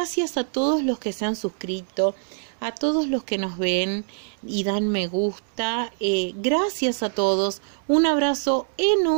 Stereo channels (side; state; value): left; silent; digital silence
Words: a todos los que se han suscrito, a todos los que nos ven y dan me gusta. Gracias a todos. Un abrazo